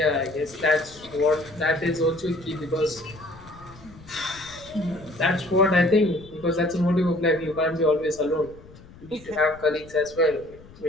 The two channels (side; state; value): left; noise; rumble, 21 dB below the sound